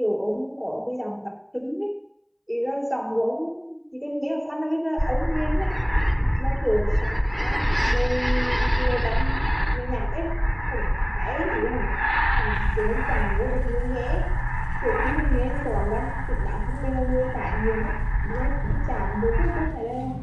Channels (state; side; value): identical; both; correlation 1.00